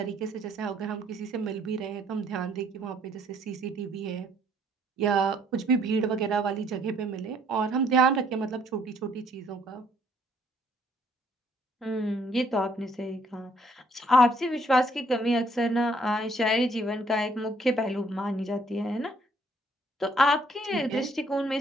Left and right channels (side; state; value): both; normal; correlation 0.65